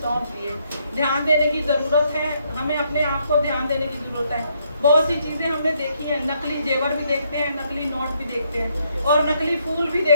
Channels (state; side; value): inverted; both; correlation -0.73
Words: दिए। ध्यान देने की जरूरत है, हमें अपने आप को ध्यान देने की जरूरत है। बहुत सी चीजें हमने देखी हैं, नकली जेवर भी देखते हैं, नकली नोट भी देखते हैं और नकली फूल भी